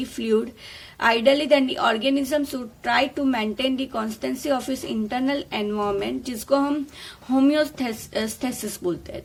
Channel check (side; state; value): both; identical; correlation 1.00